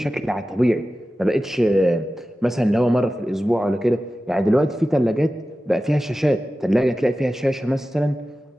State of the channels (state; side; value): normal; both; correlation 0.94